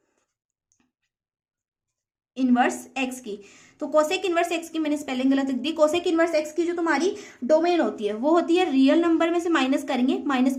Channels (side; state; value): both; identical; correlation 1.00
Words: इनवर्स एक्स की, तो कोसेक इनवर्स एक्स की मैंने स्पेलिंग गलत लिख दी। कोसेक इनवर्स एक्स की जो तुम्हारी डोमेन होती है वो होती है रियल नंबर में से माइनस करेंगे